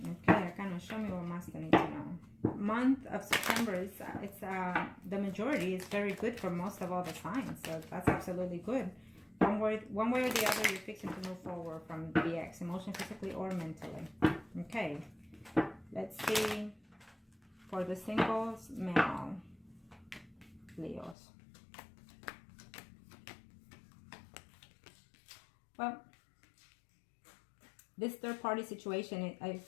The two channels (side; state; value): right; drops out; at 21.2 s